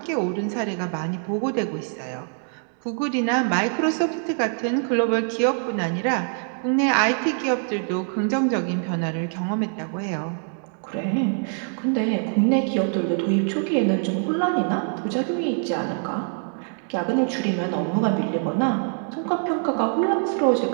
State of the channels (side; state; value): left; silent; 55 dB below the other